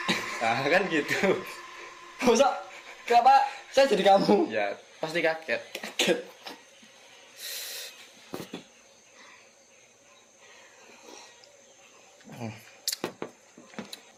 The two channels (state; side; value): identical; both; correlation 1.00